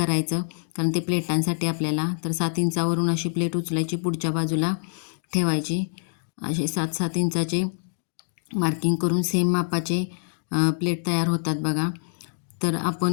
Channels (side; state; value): right; silent; digital silence